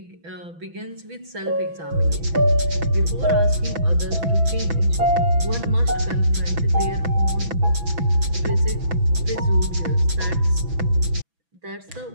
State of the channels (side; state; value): left; late; 6.0 ms